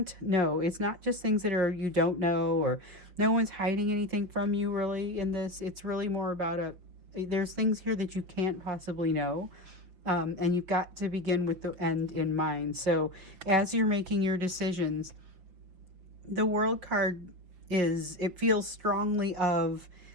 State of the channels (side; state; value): left; late; 5.8 ms